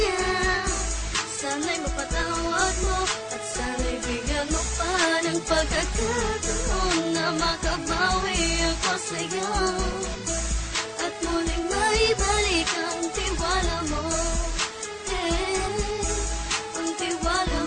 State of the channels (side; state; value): both; identical; correlation 1.00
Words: Sana'y mapatawad mo at sana'y bigyan mo pa ng pagkakataon na makabawi ako sa'yo at muling maibalik ang tiwala mo. Ang tiwala